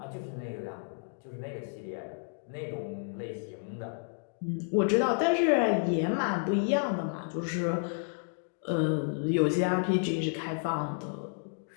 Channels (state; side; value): silent; right; digital silence